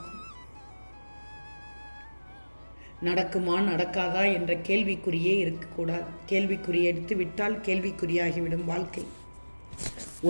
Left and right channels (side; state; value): both; inverted; correlation -1.00